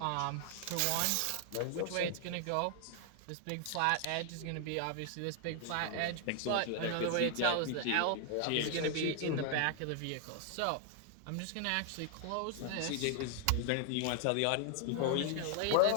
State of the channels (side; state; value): both; different; correlation 0.00